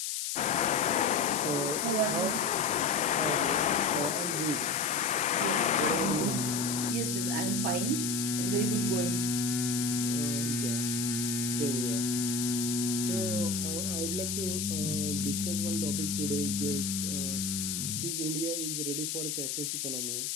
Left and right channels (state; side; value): noise; left; hiss, 2 dB below the sound